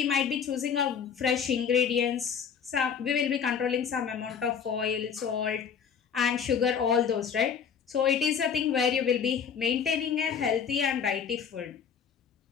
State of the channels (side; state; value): right; quieter; 7.1 dB